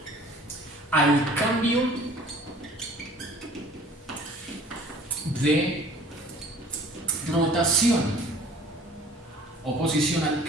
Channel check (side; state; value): both; normal; correlation 0.50